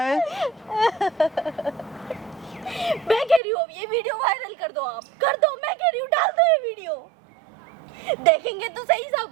मैं कह रही हूँ ये वीडियो वायरल कर दो, आप कर दो, मैं कह रही हूँ डाल दो ये वीडियो, देखेंगे तो सही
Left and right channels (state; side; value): drops out; left; at 3.4 s